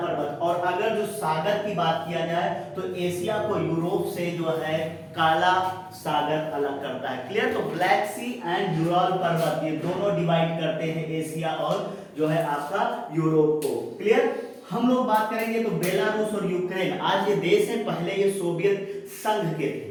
और अगर जो सागर की बात किया जाए तो एशिया को यूरोप से जो है काला सागर अलग करता है। क्लियर? तो ब्लैक सी एंड यूराल पर्वत ये दोनों डिवाइड करते हैं एशिया और जो है आपका यूरोप को। क्लियर? हम लोग बात करेंगे तो बेलारूस और यूक्रेन आज ये देश है, पहले ये सोवियत संघ के थे।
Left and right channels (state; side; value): identical; both; correlation 1.00